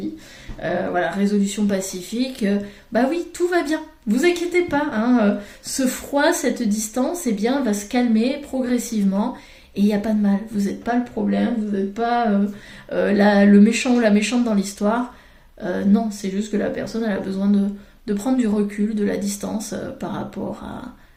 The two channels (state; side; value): identical; both; correlation 1.00